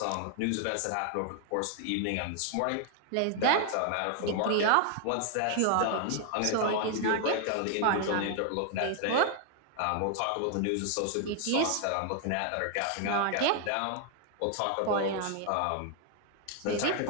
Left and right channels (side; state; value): both; different; correlation 0.00